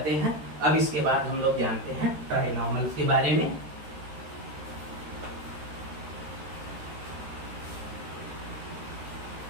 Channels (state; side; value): late; left; 13 ms